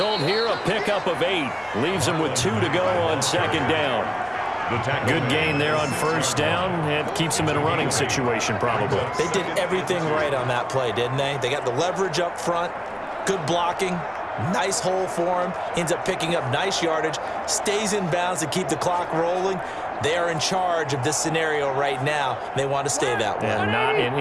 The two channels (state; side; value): identical; both; correlation 1.00